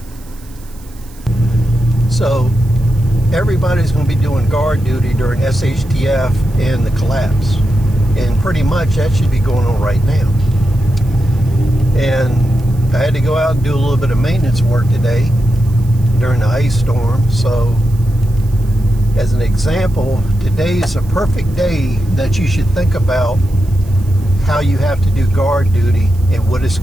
So everybody's going to be doing guard duty during SHTF and the collapse, and pretty much that should be going on right now. And I had to go out and do a little bit of maintenance work today during the ice storm. So as an example, today is a perfect day that you should think about how you have to do guard duty and what it's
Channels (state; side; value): noise; right; hiss, 25 dB below the sound